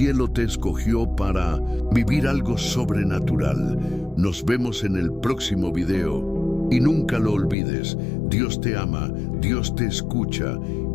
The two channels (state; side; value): drops out; right; at 7.6 s